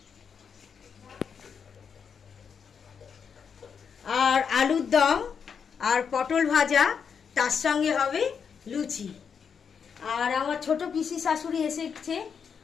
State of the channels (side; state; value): right; quieter; 6.7 dB